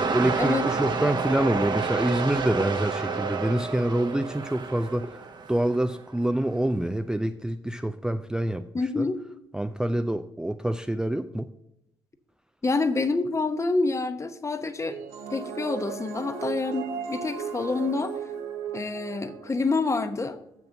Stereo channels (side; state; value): both; normal; correlation 0.81